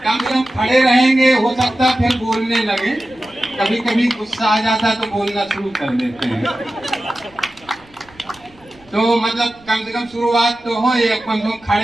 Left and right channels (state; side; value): noise; right; rumble, 28 dB below the sound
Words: कम से कम खड़े रहेंगे, हो सकता है फिर बोलने लगे। कभी कभी गुस्सा आ जाता है तो बोलना शुरू कर देते हैं। तो मतलब कम से कम शुरुआत तो हो, ये कम से कम